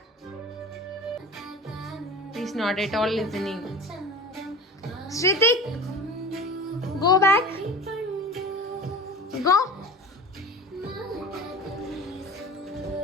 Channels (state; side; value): normal; both; correlation 0.35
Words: He's not at all listening. Shritik, go back. Go.